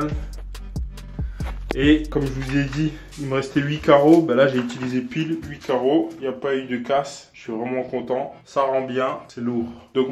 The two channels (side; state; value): both; identical; correlation 1.00